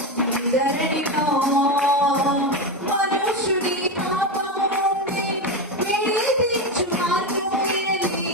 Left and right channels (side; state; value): both; normal; correlation 0.15